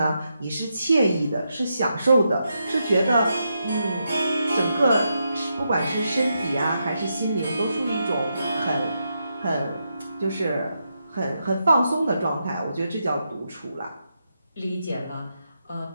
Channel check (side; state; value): both; inverted; correlation -0.84